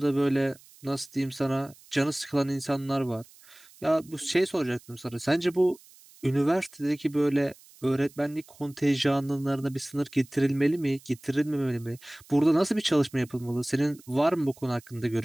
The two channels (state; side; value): noise; right; hiss, 25 dB below the sound